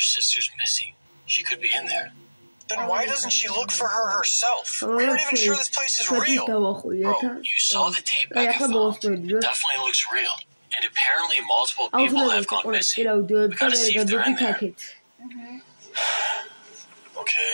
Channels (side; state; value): both; inverted; correlation -1.00